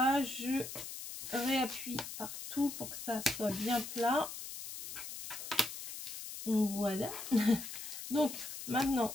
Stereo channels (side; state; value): left; noise; hiss, 9 dB below the sound